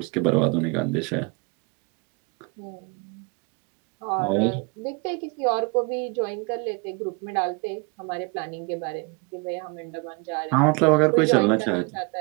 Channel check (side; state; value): left; quieter; 30.5 dB